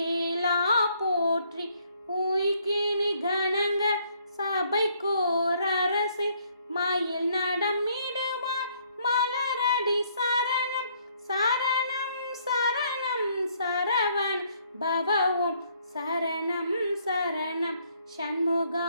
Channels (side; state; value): both; inverted; correlation -0.67